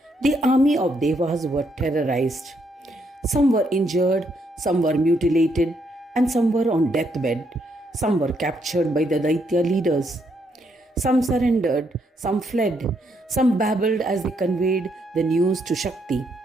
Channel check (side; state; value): both; normal; correlation 0.75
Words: the army of Devas were terrorized. Some were injured, some were mutilated, and some were on deathbed. Some were captured by the Daitya leaders. Some surrendered, some fled, some babbled as they conveyed the news to Shakti.